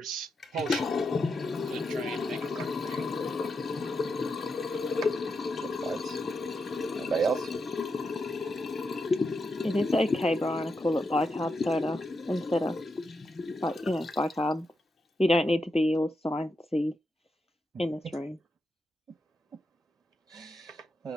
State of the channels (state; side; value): normal; both; correlation 0.85